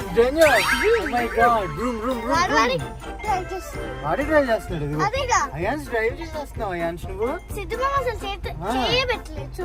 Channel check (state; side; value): identical; both; correlation 1.00